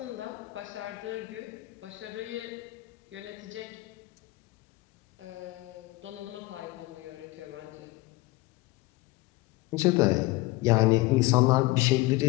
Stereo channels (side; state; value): right; quieter; 20.6 dB